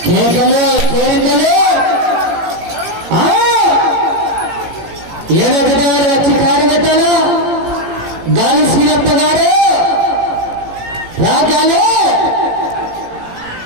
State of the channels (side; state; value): left; late; 17 ms